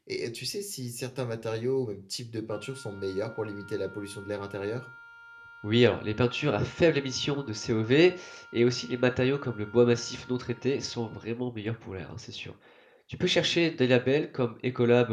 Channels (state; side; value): identical; both; correlation 1.00